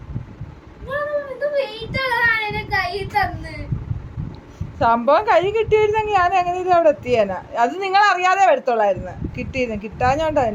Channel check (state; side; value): identical; both; correlation 1.00